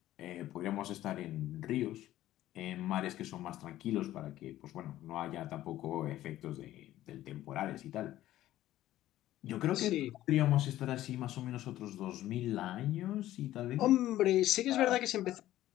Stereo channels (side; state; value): right; quieter; 14.2 dB